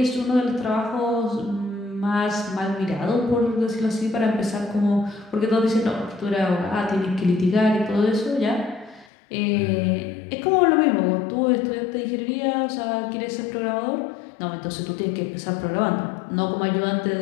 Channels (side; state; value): right; drops out; at 9.1 s